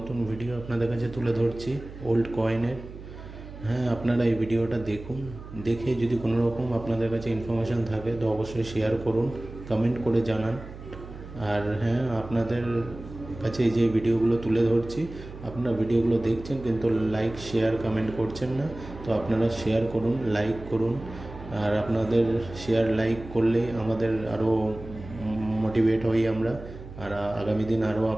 ভিডিও আপনাদের কাছে তুলে ধরছি ওল্ড কয়েনের। হ্যাঁ, আপনারা এই ভিডিওটা দেখুন। দেখে যদি কোনো রকম আপনাদের কাছে ইনফরমেশান থাকে তো অবশ্যই শেয়ার করুন, কমেন্ট করে জানান। আর হ্যাঁ, আপনাদের কাছে এই যে ভিডিওগুলো তুলে ধরছি, আপনারা ভিডিওগুলো দেখছেন কিন্তু লাইক শেয়ার কমেন্ট করছেন না। তো আপনারা শেয়ার করুন, লাইক করুন। আর আপনাদের শেয়ার লাইক করলেই আমাদের আরও মোটিভেট হই আমরা। আর আগামী দিন আরও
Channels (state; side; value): noise; right; hum, 14 dB below the sound